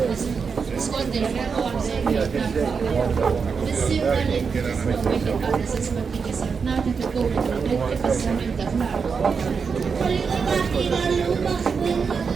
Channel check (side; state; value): left; quieter; 5.6 dB